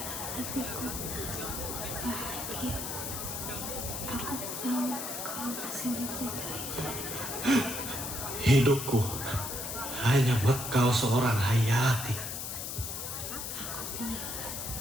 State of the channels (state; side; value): noise; left; hiss, 5 dB below the sound